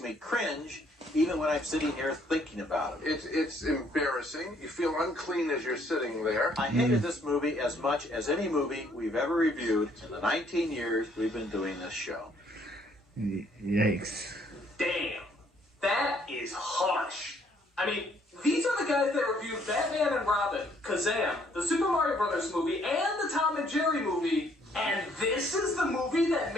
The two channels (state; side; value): normal; both; correlation 0.65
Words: cringe even when I'm sitting here thinking about it. It's embarrassing. You feel unclean as you're sitting there. I hated this movie as much as any movie we've ever reviewed in the 19 years we've been doing this show. Yikes. Damn. That is harsh. I mean, these are the guys that reviewed Batman and Robin, Kazam, the Super Mario Brothers movie, and the Tom and Jerry movie, and this is the movie that